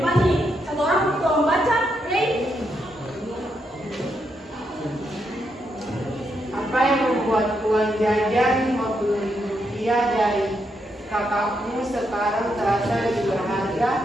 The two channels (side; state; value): both; normal; correlation 0.80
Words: nih. Satu orang tolong baca, Ray. Apa yang membuat uang jajan Rp50.000 dari kakakmu sekarang terasa lebih